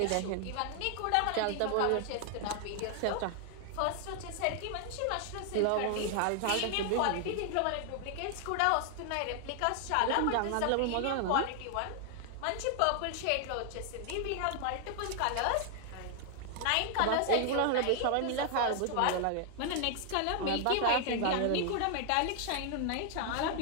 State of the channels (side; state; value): both; different; correlation 0.00